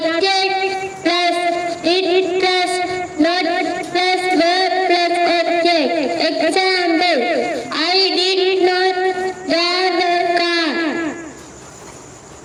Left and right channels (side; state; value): both; identical; correlation 1.00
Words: plus did plus not plus verb plus object. Example, I did not drive the car.